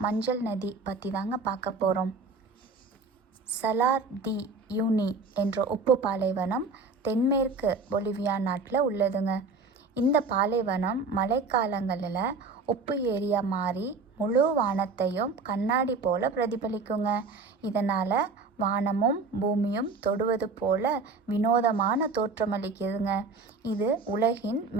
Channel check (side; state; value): left; quieter; 4.1 dB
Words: மஞ்சள் நதி பற்றி தாங்க பார்க்க போகிறோம். சலார் டி யூனி என்ற உப்பு பாலைவனம் தென்மேற்கு பொலிவியா நாட்டில் உள்ளதுங்க. இந்த பாலைவனம் மழைக்காலங்களில் உப்பு ஏரியா மாறி முழு வானத்தையும் கண்ணாடி போல் பிரதிபலிக்குங்க. இதனால் வானமும் பூமியும் தொடுவது போல வினோதமான தோற்றமளிக்குதுங்க. இது உலகின்